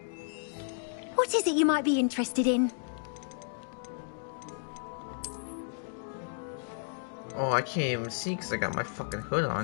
What is it you might be interested in? Oh, I can't even see because I got my fucking hood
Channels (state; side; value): silent; right; digital silence